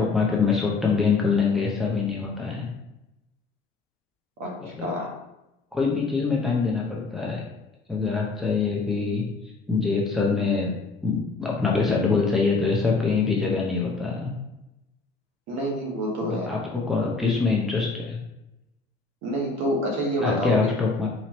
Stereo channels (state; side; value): quieter; right; 3.8 dB